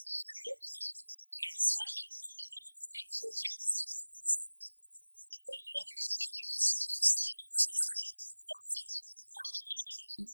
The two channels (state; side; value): inverted; both; correlation -1.00